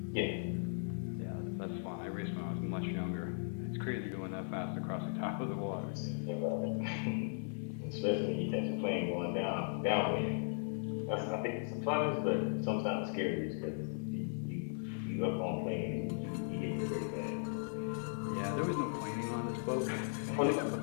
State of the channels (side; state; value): right; silent; 53 dB below the other